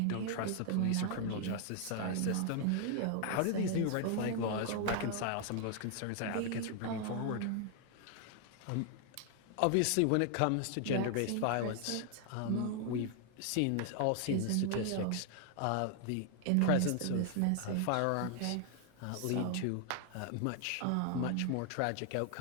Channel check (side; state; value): both; different; correlation 0.00